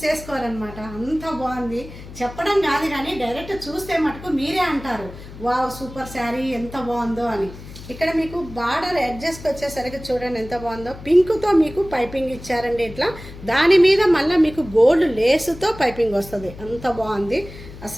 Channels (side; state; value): left; noise; hum, 15 dB below the sound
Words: చేసుకోరనమాట. అంత బాగుంది. చెప్పడం కాదు కానీ డైరెక్ట్ చూస్తే మటుకు మీరే అంటారు వావ్ సూపర్ శారీ ఎంత బాగుందో అని. ఇక్కడ మీకు బార్డర్ అడ్జస్ట్ వచ్చేసరికి చూడండి ఎంత బాగుందో. పింక్తో మీకు పైపింగ్ ఇచ్చారండి ఇట్లా. దాని మీద మళ్ళీ మీకు గోల్డ్ లేసుతో పైపింగ్ వస్తుంది. అంత బాగుంది